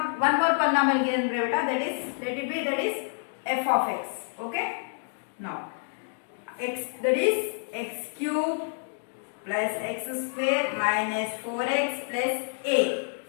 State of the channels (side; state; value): right; silent; digital silence